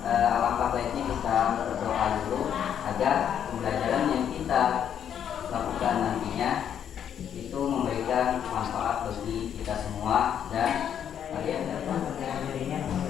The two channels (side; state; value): right; quieter; 9.1 dB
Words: alangkah baiknya kita berdoa dulu agar pembelajaran yang kita lakukan nantinya itu memberikan manfaat bagi kita semua dan kalian dapat ya.